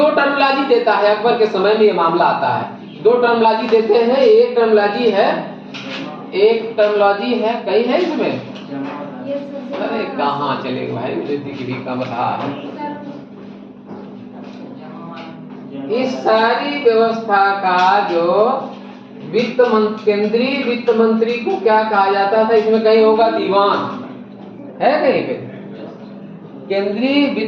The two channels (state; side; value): identical; both; correlation 1.00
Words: टर्मोलॉजी देता है। अकबर के समय में ये मामला आता है। 2 टर्मोलॉजी देते हैं। एक टर्मोलॉजी है, कई है इसमें? अरे कहाँ चले भाई, मुझे दिख भी कम रहा है। इस सारी व्यवस्था का जो केंद्रीय वित्त मंत्री को क्या कहा जाता था? इसमें कहीं होगा दीवान, है कहीं पे? केंद्रीय